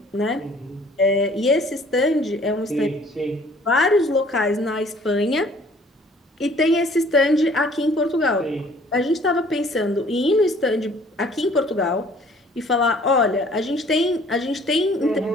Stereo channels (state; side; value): normal; both; correlation 0.55